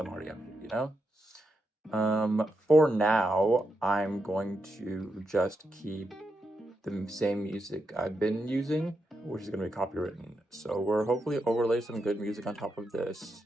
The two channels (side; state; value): both; normal; correlation 0.84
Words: already up here, you know? For now, I'm going to just keep the same music I've been using, which is going to be copywritten. So we're hopefully overlay some good music on top of this.